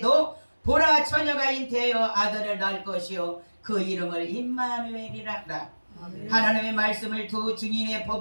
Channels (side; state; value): both; inverted; correlation -1.00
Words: 보라 처녀가 잉태하여 아들을 낳을 것이요 그 이름을 임마누엘이라 하라. 하나님의 말씀을 두 증인의